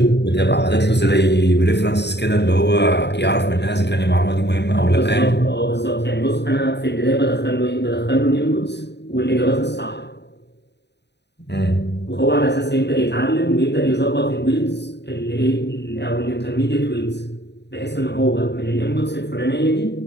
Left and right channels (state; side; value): late; right; 0.50 ms